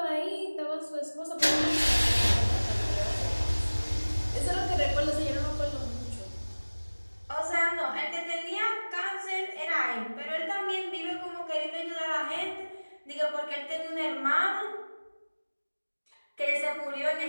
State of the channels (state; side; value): inverted; both; correlation -1.00